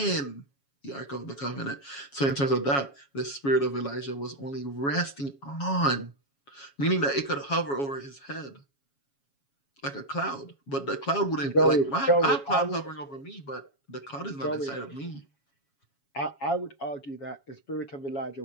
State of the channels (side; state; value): right; late; 7.2 ms